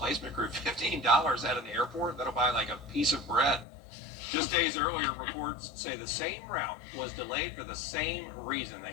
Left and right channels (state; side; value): drops out; right; at 3.7 s